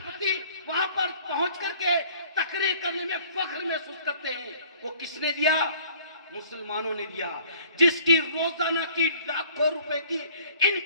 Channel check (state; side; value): inverted; both; correlation -0.54